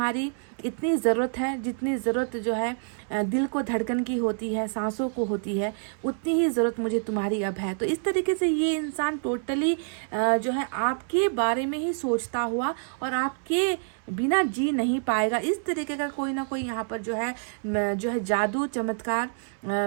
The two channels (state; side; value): silent; left; 60 dB below the other